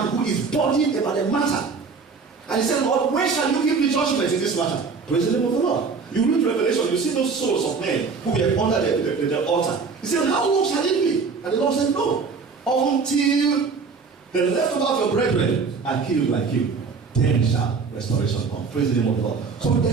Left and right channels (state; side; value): quieter; left; 5.0 dB